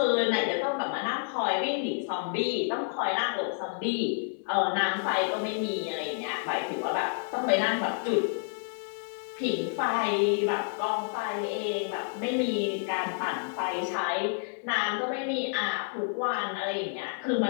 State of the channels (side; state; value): right; silent; digital silence